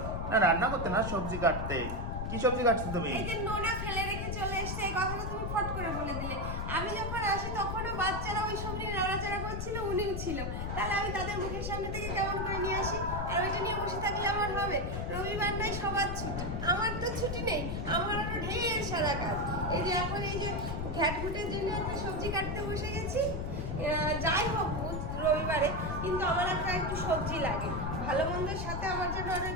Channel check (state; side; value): noise; left; rumble, 3 dB below the sound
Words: না রান্না করতে না, সবজি কাটতে। কি সবজি কাটছো তুমি? এই যে নোনা ফেলে রেখে চলে এসছে, এই কথাটা তুমি ফট করে বলে দিলে। আমি যখন আসি তখনও বাচ্চারা ওই সবজি নাড়াচাড়া করছিল, উনিও ছিল। তাহলে আমি তাদের মুখের সামনে থেকে কেমন করে নিয়ে আসি? আর ওইটা নিয়ে বসে থাকলে আমার হবে? রবিবার নাই, সবার ছুটি, আমার তো ছুটি নেই। আমার আরো ঢের সারা কাজ। এই যে এখন এই যে ঘ্যাটঘুটের জন্য একটা সবজি কাটতে বসে গেছি। যাই হোক রবিবারে, কিন্তু আমার একটু সবজি লাগে। ভালো মন্দের সাথে আমার জন্য আরো